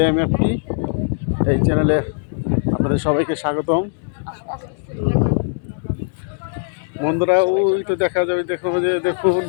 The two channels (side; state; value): right; silent; digital silence